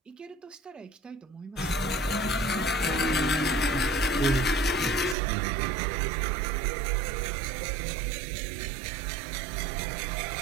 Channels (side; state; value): left; drops out; at 5.2 s